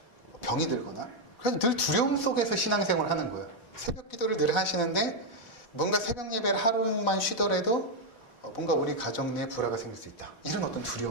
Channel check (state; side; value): late; right; 4.0 ms